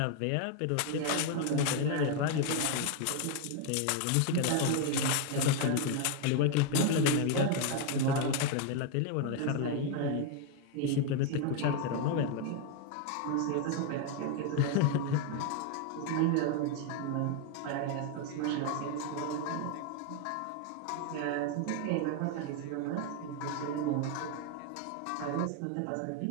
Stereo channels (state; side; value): different; both; correlation 0.01